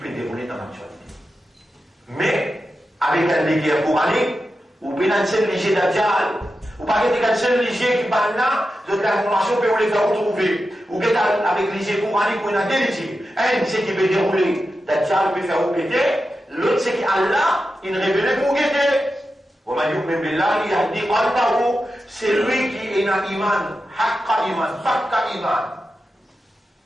déroulée dans l'actualité. Mais, avec un guerre coranique, vous pouvez un seul léger d'Adjal. Vous ne pouvez pas un seul léger qui parle là, de l'information que vous les faire retrouver. Vous pouvez avec léger coranique, vous avez deux légers. Un, c'est qui peut dérouler d'Adjal, peut faire vous péter. L'autre, c'est qu'Allah, il révèle pour guetter. C'est lui qui est dans l'iman, haqqa iman, fakka iman.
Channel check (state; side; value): normal; both; correlation 0.90